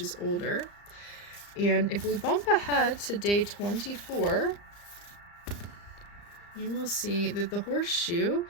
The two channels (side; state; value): right; late; 35 ms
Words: is older. And if we bump ahead to day 24, you will see that the horseshoe